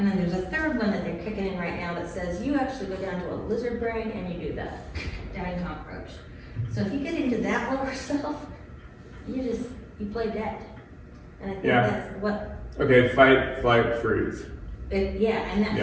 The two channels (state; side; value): identical; both; correlation 1.00